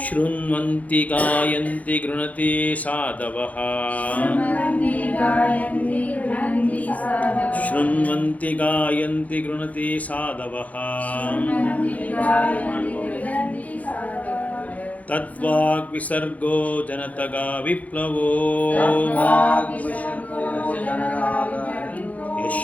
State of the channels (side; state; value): right; late; 0.072 ms